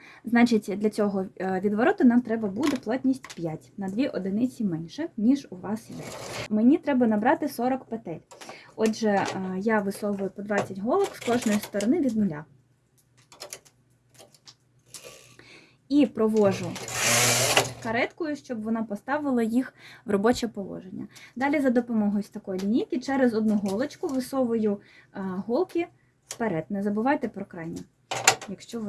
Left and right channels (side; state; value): both; identical; correlation 1.00